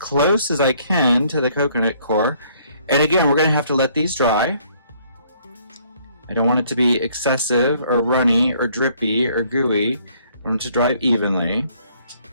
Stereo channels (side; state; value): both; inverted; correlation -0.64